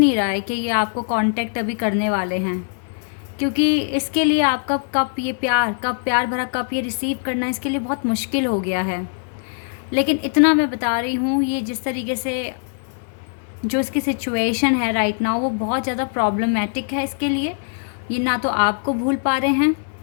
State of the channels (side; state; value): right; silent; digital silence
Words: रहा है कि ये आपको कांटेक्ट अभी करने वाले हैं, क्योंकि इसके लिए आपका प्यार भरा कप ये रिसीव करना इसके लिए बहुत मुश्किल हो गया है। लेकिन इतना मैं बता रही हूँ, ये जिस तरीके से जो इसकी सिचुएशन है राइट नाउ, वो बहुत ज़्यादा प्रॉब्लमेटिक है इसके लिए। ये ना तो आपको भूल पा रहे हैं